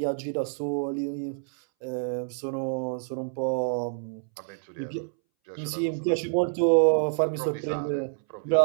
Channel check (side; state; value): left; silent; 59 dB below the other